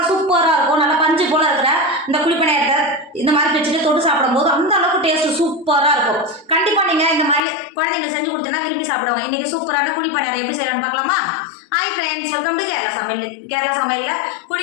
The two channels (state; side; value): drops out; right; at 7.4 s